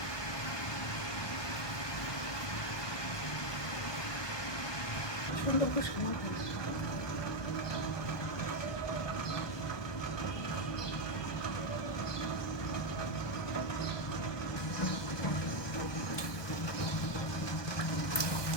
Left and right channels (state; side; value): late; right; 1.2 ms